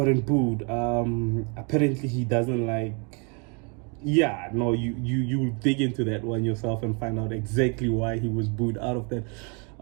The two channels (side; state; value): left; quieter; 34.5 dB